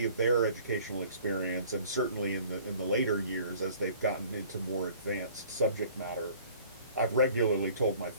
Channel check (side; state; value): both; inverted; correlation -0.51